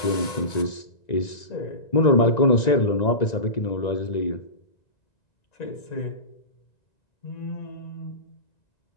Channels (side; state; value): right; late; 1.9 ms